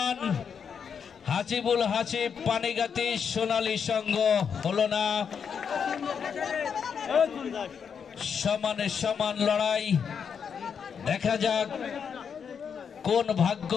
হাসিবুল হাসিব পানিগাতি সোনালী সংঘ হলো না। সমানে সমান লড়াই দেখা যাক কোন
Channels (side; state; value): right; quieter; 6.9 dB